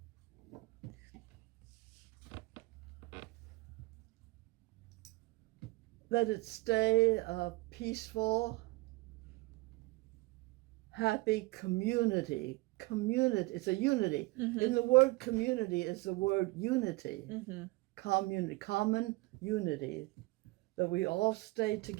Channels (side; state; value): left; quieter; 22.4 dB